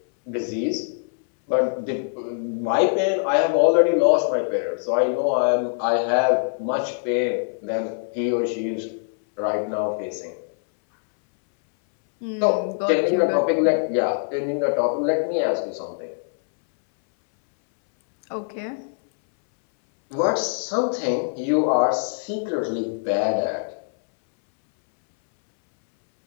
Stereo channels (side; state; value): right; silent; 63 dB below the other